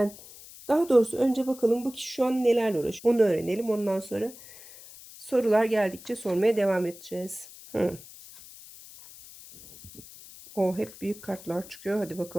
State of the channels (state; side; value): noise; left; hiss, 18 dB below the sound